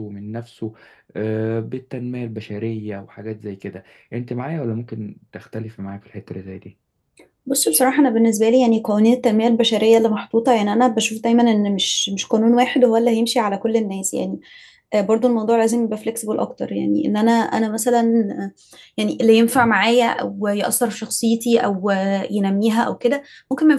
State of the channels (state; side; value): identical; both; correlation 1.00